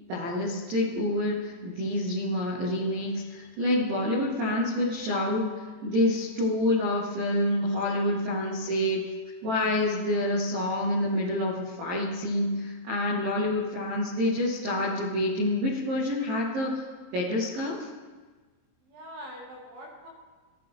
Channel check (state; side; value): late; left; 23 ms